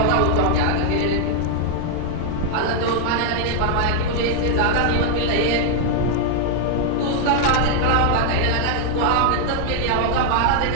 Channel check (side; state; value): both; different; correlation 0.00